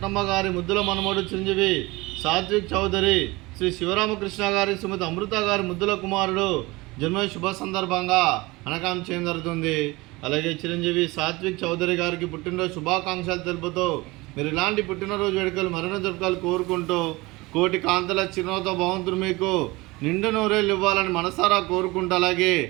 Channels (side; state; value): left; quieter; 22.3 dB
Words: గారి ముద్దుల మనమడు చిరంజీవి సాత్విక్ చౌదరి, శ్రీ శివరామకృష్ణ గారి, శ్రీమతి అమృత గారి ముద్దుల కుమారుడు జన్మ శుభ సందర్భంగా అనకాం చేయడం జరుగుతుంది. అలాగే చిరంజీవి సాత్విక్ చౌదరి గారికి పుట్టినరోజు శుభాకాంక్షలు తెలుపుతూ మీరు ఇలాంటి పుట్టినరోజు వేడుకలు మరణ జరుపుకోవాలి కోరుకుంటూ కోటి కాంతల చిరునవ్వుతో భగవంతుడు మీకు నిండు నూరేళ్ళు ఇవ్వాలని మనసారా కోరుకుంటూ అలాగే